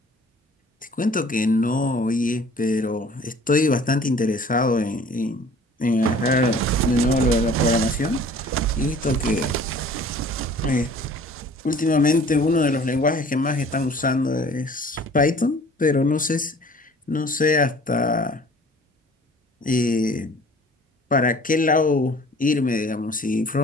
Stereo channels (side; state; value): both; normal; correlation 0.49